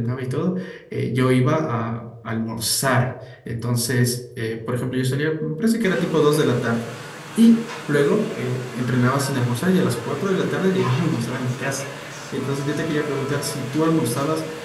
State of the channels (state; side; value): identical; both; correlation 1.00